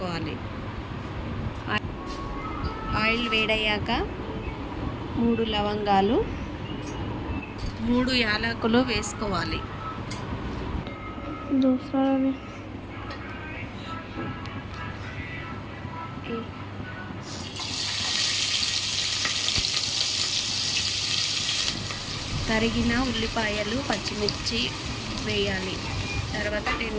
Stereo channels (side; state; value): both; identical; correlation 1.00